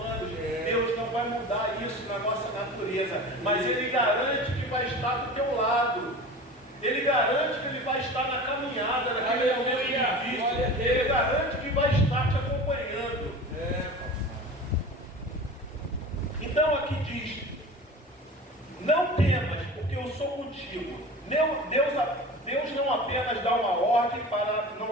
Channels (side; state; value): both; normal; correlation 0.35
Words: Deus não vai mudar isso na nossa natureza, mas Ele garante que vai estar do teu lado. Ele garante que Ele vai estar na caminhada, naquele momento difícil. Ele garante que vai estar te acompanhando. Então aqui diz: não temas, porque eu sou contigo. Deus não apenas dá uma ordem para